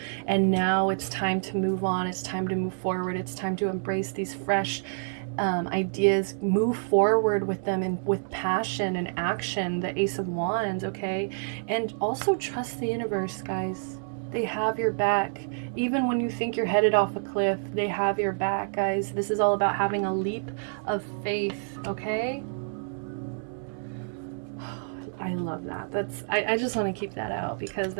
and now it's time to move on. It's time to move forward. It's time to embrace these fresh ideas, move forward with them and with passion and action. The Ace of Wands, okay? And also trust the universe, guys. They have your back. Even when you think you're headed off a cliff, they have your back, guys. This is all about having a leap of faith, okay? I love that. I just want to keep that out because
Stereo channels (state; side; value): silent; left; digital silence